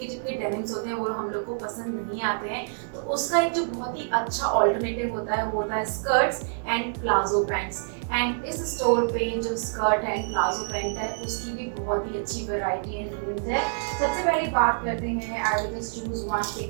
चिपके डेनिम्स होते हैं वो हम लोग को पसंद नहीं आते हैं, तो उसका एक जो बहुत ही अच्छा ऑल्टरनेटिव होता है वो होता है skirts and palazzo pants. And इस स्टोर पे जो स्कर्ट एंड प्लाजो पैंट है उसकी भी बहुत ही अच्छी वैरायटी एंड रेंज है. सबसे पहले बात करते हैं I will just choose one,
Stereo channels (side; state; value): left; silent; digital silence